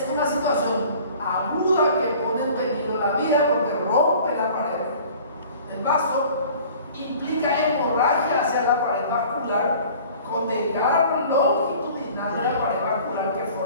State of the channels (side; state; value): both; inverted; correlation -0.48